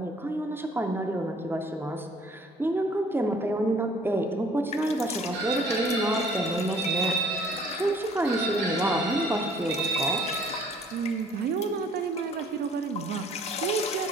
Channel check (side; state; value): both; normal; correlation 0.57